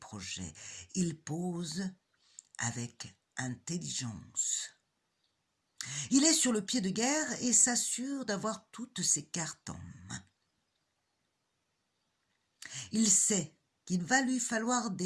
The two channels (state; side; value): identical; both; correlation 1.00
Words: Il pose avec intelligence. Il est sur le pied de guerre et s'assure d'avoir toutes ses cartes en main. Il sait qu'il va lui falloir